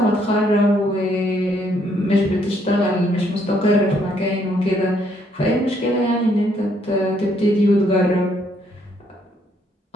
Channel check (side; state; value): both; normal; correlation 0.70